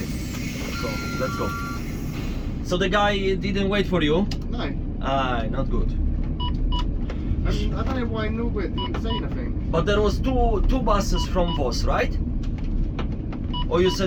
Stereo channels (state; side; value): identical; both; correlation 1.00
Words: So let's go. So the guy didn't wait for you? No. Not good. And I don't know why Norbert didn't say nothing. But there was two buses from Voss, right? Or you